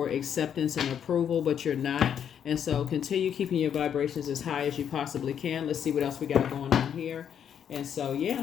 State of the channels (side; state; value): right; quieter; 8.6 dB